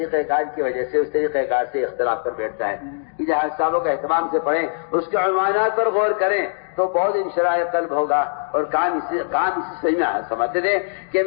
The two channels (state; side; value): silent; right; digital silence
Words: کار کی وجہ سے اس طریقہ کار سے اختلاف کر بیٹھتا ہے. یہ حیات الصحابہ کا اہتمام سے پڑھیں، اس کے عنوانات پر غور کریں تو بہت انشراح قلب ہوگا اور کام اسی صحیح میں سمجھتے تھے کہ